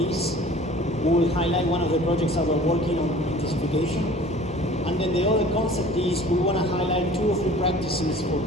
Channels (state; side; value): normal; both; correlation 0.47